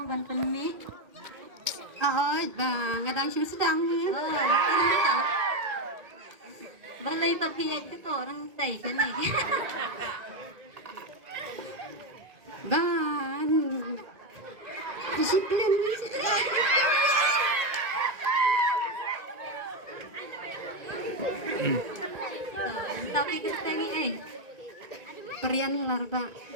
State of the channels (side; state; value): left; late; 1.8 ms